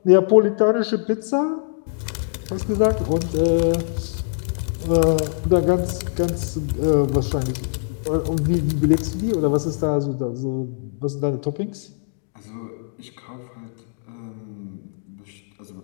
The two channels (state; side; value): silent; right; digital silence